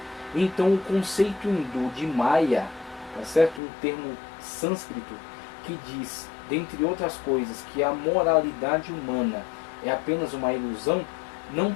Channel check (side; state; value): right; drops out; at 3.6 s